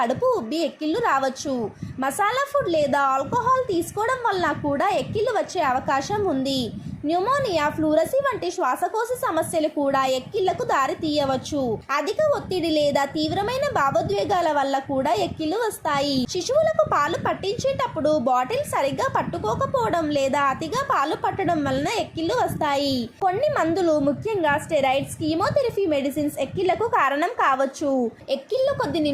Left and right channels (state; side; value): identical; both; correlation 1.00